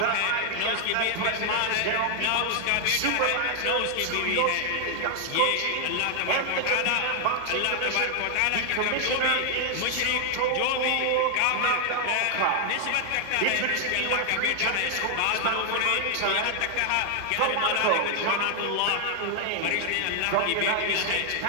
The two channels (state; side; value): different; both; correlation 0.00